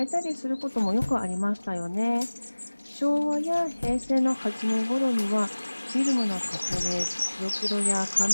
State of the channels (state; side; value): inverted; both; correlation -1.00